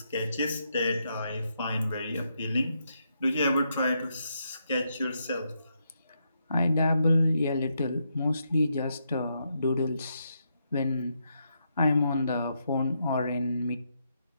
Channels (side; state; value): both; inverted; correlation -0.80